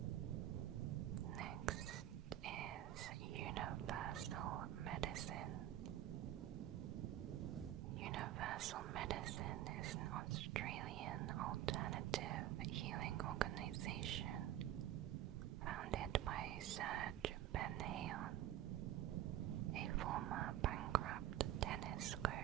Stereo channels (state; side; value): quieter; left; 12.7 dB